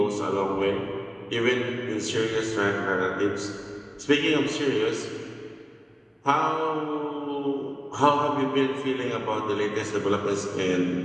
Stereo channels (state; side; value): identical; both; correlation 1.00